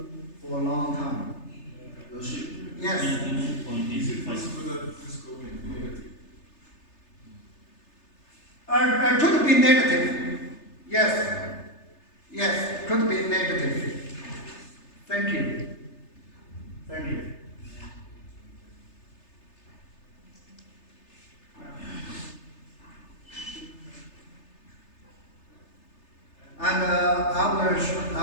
for a long time. Yes. 99.85. Could be negative. Yes. Yes, could be negative. Thank you. Thank you. And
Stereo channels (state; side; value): late; right; 3.3 ms